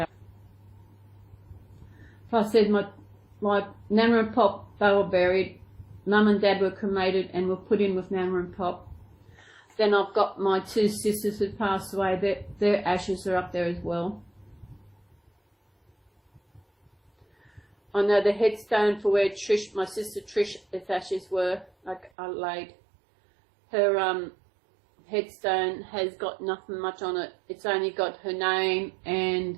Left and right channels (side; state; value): left; drops out; at 22.1 s